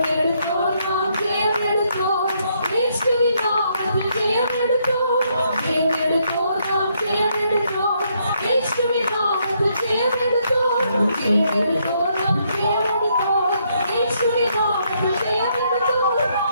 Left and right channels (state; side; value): inverted; both; correlation -0.74